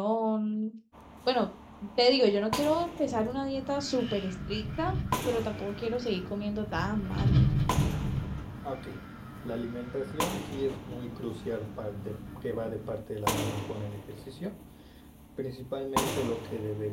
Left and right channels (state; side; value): identical; both; correlation 1.00